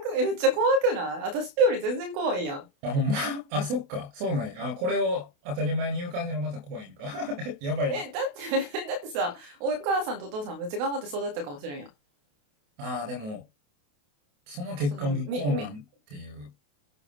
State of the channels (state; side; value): late; left; 28 ms